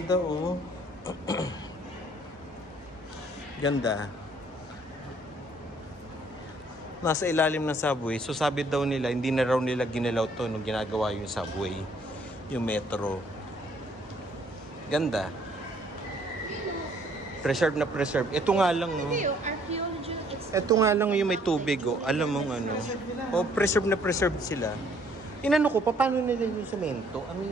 oh. Ganda. Nasa ilalim ng subway. So sabi daw nila, hindi na raw nila ginalaw to nung ginagawa yung subway. Yung metro. Ganda. Preserve na preserve. Ito nga lang oh. Ito nga lang yung may tubig oh. Alam mo ano. Oh, preserve na preserve sila. Inano ko, paano nila yung semento? Ano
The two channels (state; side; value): normal; both; correlation 0.63